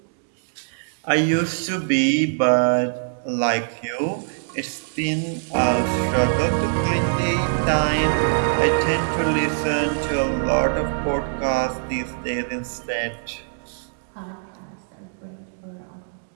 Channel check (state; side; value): silent; left; digital silence